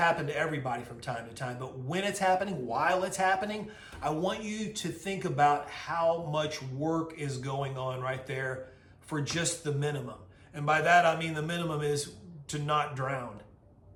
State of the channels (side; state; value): both; identical; correlation 1.00